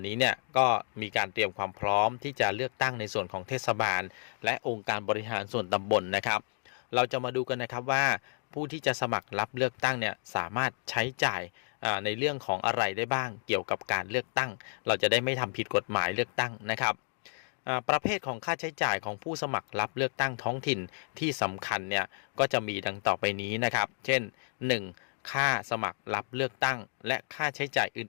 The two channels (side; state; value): right; silent; 57 dB below the other